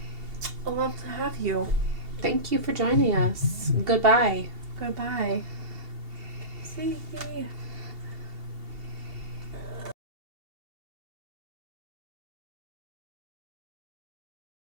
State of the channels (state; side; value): late; left; 2.7 ms